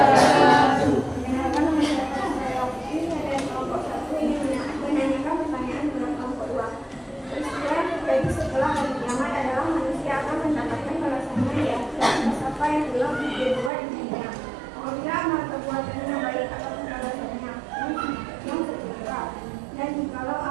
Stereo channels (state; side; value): drops out; left; at 13.7 s